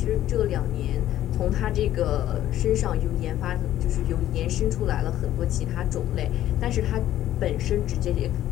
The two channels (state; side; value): quieter; right; 12.8 dB